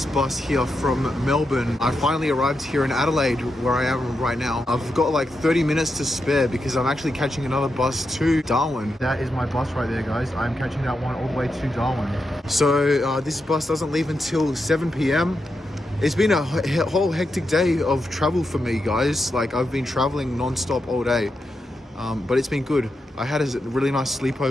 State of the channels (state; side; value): normal; both; correlation 0.86